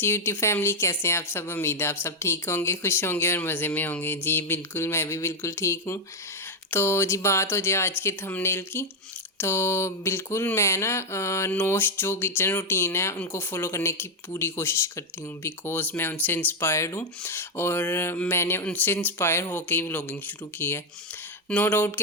यूट्यूब फैमिली, कैसे हैं आप सब। उम्मीद है आप सब ठीक होंगे, खुश होंगे और मज़े में होंगे। जी बिल्कुल, मैं भी बिल्कुल ठीक हूँ। तो जी बात हो जाए आज के थंबनेल की, तो बिल्कुल मैं ना नोश जो किचन रूटीन है उनको फॉलो करने की पूरी कोशिश करती हूँ, बिकॉज़ मैं उनसे इंस्पायर्ड हूँ और मैंने उनसे इंस्पायर होकर ही व्लॉगिंग शुरू की है। नो डाउट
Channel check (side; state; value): both; normal; correlation 0.02